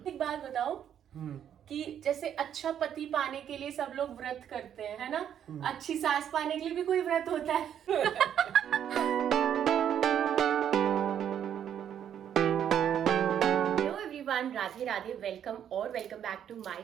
एक बात बताओ कि जैसे अच्छा पति पाने के लिए सब लोग व्रत करते हैं, है ना? अच्छी सास पाने के लिए भी कोई व्रत होता है? Hello everyone, Radhe Radhe, welcome back to my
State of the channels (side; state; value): left; quieter; 9.4 dB